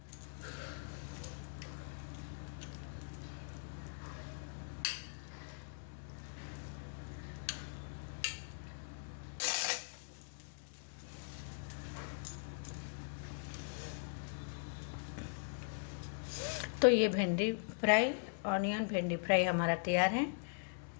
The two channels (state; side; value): silent; right; digital silence